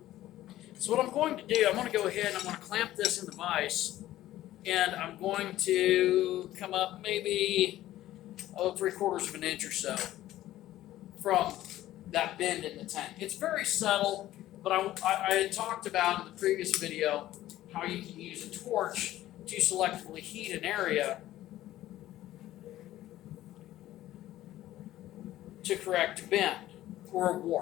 So what I'm going to do, I'm going to go ahead and I'm going to clamp this in the vise, and I'm going to come up maybe 3/4 of an inch or so from that bend in the tank. It's very subtle, but I had talked about in the previous video how you can use a torch to selectively heat an area to correct a bend, or a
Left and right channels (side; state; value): right; quieter; 14.5 dB